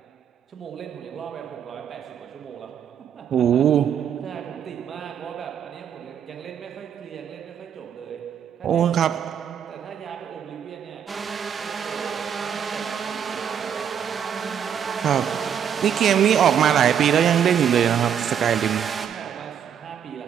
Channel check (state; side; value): quieter; left; 8.5 dB